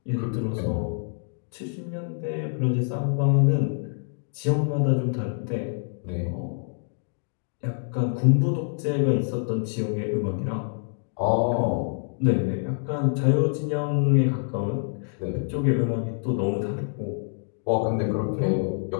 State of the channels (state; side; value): silent; right; digital silence